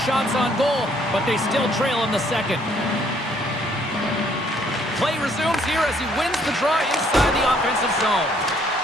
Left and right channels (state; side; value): normal; both; correlation 0.65